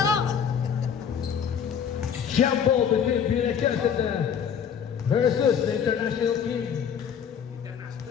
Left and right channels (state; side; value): quieter; right; 7.8 dB